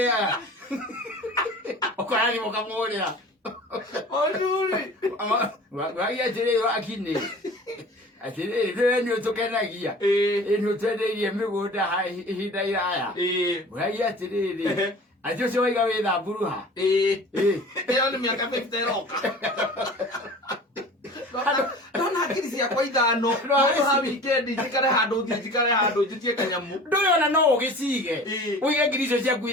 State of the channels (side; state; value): both; normal; correlation 0.41